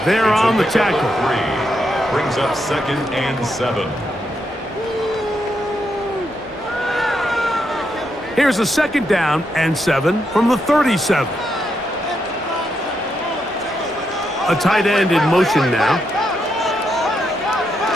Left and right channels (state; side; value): normal; both; correlation 0.81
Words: there on the tackle. Brings up 2nd and 7. Here's a 2nd down and 7 from the 37. A tight end in motion now.